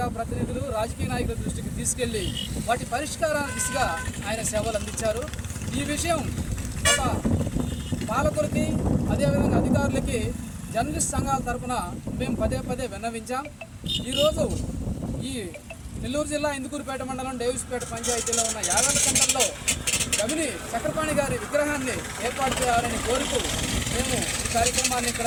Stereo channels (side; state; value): both; identical; correlation 1.00